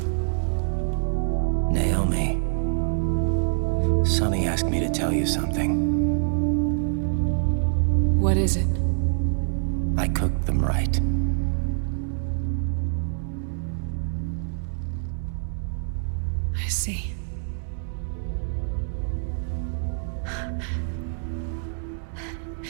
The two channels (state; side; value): silent; left; digital silence